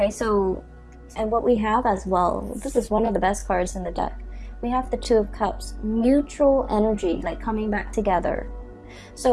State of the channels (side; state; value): both; identical; correlation 1.00